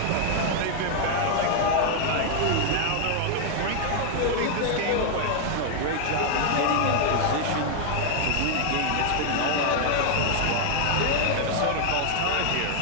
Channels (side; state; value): both; different; correlation 0.00